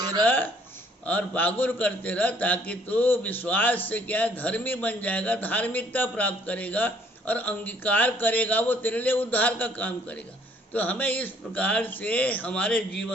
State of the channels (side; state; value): both; normal; correlation 0.61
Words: रह और बागुर करते रह, ताकि तू विश्वास से क्या धर्मी बन जाएगा, धार्मिकता प्राप्त करेगा और अंगीकार करेगा, वो तेरे लिए उद्धार का काम करेगा। तो हमें इस प्रकार से हमारे